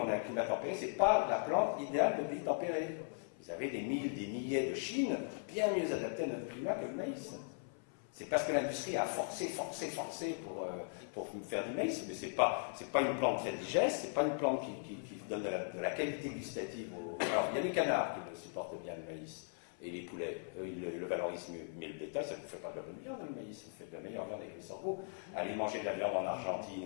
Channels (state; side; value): silent; right; 52 dB below the other